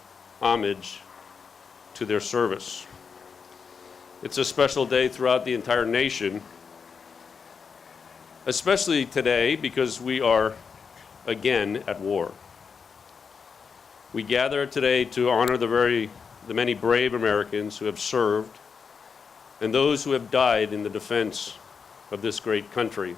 homage to their service. It's a special day throughout the entire nation, especially today because we are again at war. We gather today to honor the many brave Americans who have served and those who have died in the defense of this great country.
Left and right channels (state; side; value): quieter; right; 5.9 dB